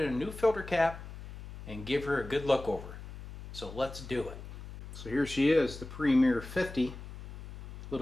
a new filter cap and give her a good look over. So let's do it. So here she is, the Premier 50,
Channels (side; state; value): left; noise; hum, 12 dB below the sound